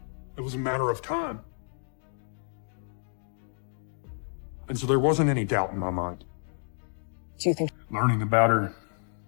It was a matter of time. And so there wasn't any doubt in my mind. Do you think Learning about her,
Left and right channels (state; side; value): silent; right; 58 dB below the other